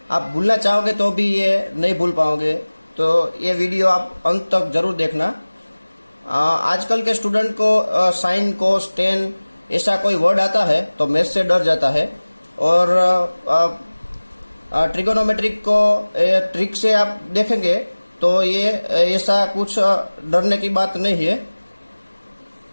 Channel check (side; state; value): both; inverted; correlation -1.00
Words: आप भूलना चाहोगे तो भी ये नहीं भूल पाओगे, तो ये वीडियो आप अंत तक जरूर देखना। आजकल के स्टूडेंट को साइन कोस टेन ऐसा कोई वर्ड आता है तो मैथ से डर जाता है, और ट्रिगोनोमेट्रिक को ट्रिक से आप देखेंगे तो ये ऐसा कुछ डरने की बात नहीं है।